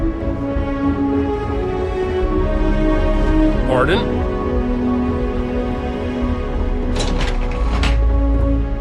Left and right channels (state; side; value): identical; both; correlation 1.00